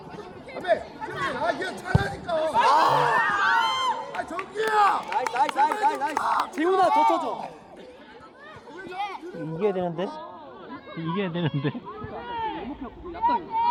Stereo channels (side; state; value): both; identical; correlation 1.00